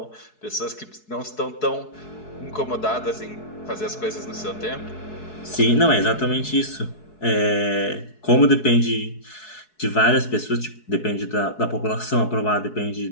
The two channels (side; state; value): right; late; 4.7 ms